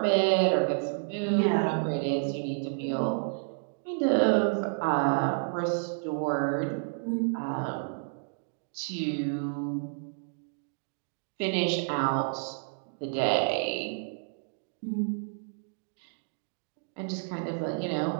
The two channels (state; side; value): silent; left; digital silence